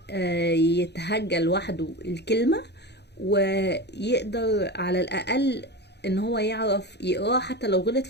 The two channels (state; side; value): late; right; 0.49 ms